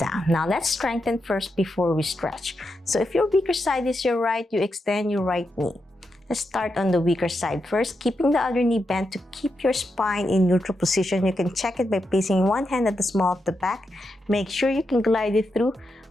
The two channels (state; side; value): normal; both; correlation 0.85